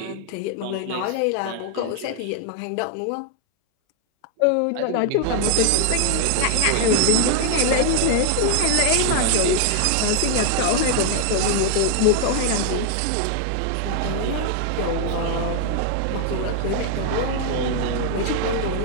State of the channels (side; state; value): both; different; correlation 0.00